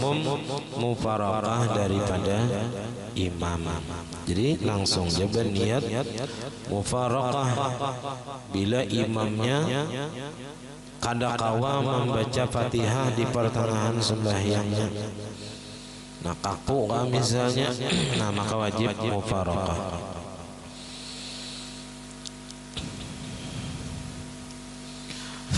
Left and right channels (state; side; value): identical; both; correlation 1.00